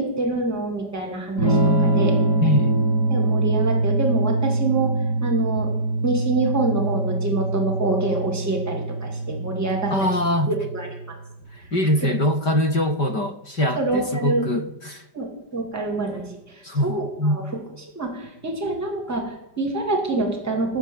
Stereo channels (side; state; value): right; late; 5.1 ms